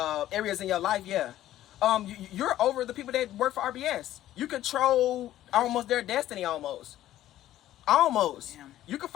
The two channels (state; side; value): quieter; right; 13.4 dB